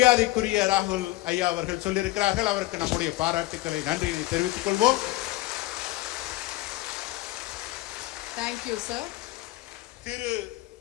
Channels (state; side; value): quieter; right; 18.4 dB